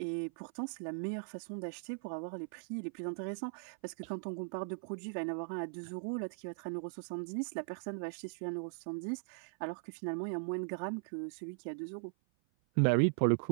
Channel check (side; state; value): left; silent; 52 dB below the other